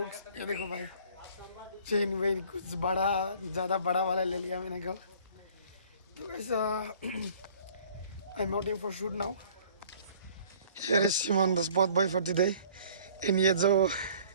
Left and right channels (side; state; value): both; inverted; correlation -0.53